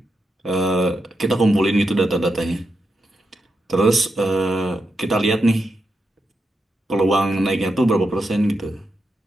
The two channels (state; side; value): normal; both; correlation 0.86